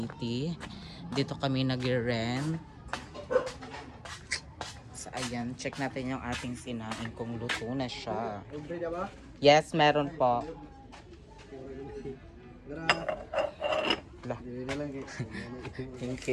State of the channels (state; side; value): identical; both; correlation 1.00